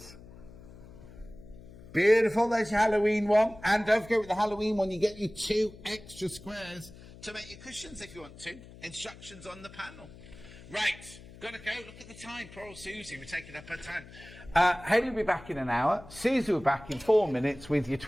Beautiful, there's your Halloween one. And don't forget with the Halloween one, you get your 2 extra squares to make your cushions if you want to. Instructions on the panel. Right, gotta go. Look at the time. Poor old Susie, we're taking up her time. Hayley will be back in an hour. Susie will be back in 4 minutes with your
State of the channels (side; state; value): left; noise; hum, 18 dB below the sound